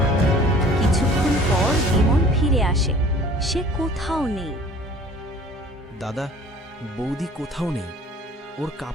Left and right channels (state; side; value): normal; both; correlation 0.49